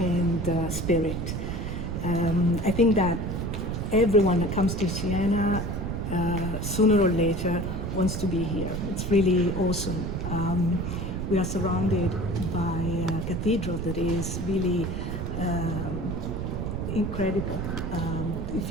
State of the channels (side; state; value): right; noise; rumble, 3 dB below the sound